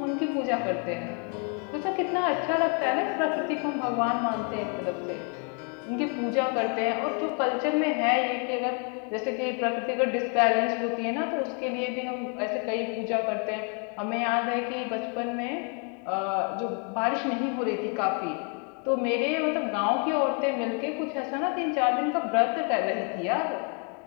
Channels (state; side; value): quieter; right; 38.9 dB